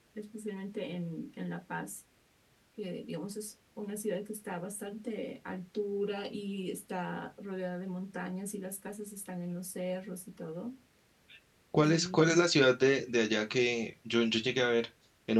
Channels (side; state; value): both; identical; correlation 1.00